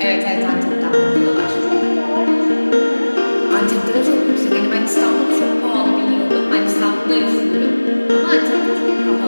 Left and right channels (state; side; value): inverted; both; correlation -1.00